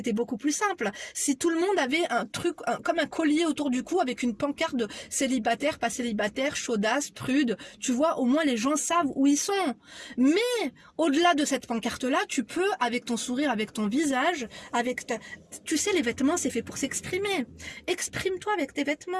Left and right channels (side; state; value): both; identical; correlation 1.00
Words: beaucoup plus simple. Si tout le monde avait un truc, comme un collier autour du cou avec une pancarte de célibataire, pas célibataire, chaudasse, prude, tu vois, au moins les gens savent où ils sont. Mais, au-delà de cette pancarte-là, tu peux, avec ton sourire, avec ton visage, tu sais, les vêtements, c'est fait pour s'exprimer. Exprime-toi avec tes